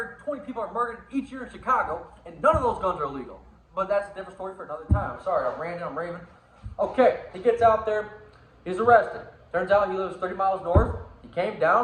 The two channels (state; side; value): identical; both; correlation 1.00